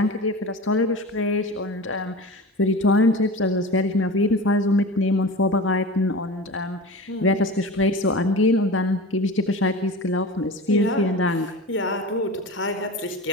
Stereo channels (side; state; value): both; normal; correlation 0.32